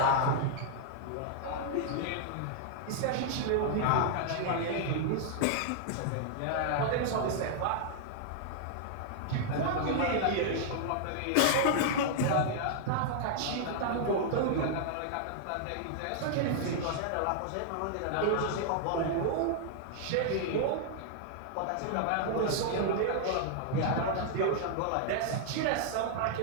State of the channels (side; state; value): both; different; correlation -0.01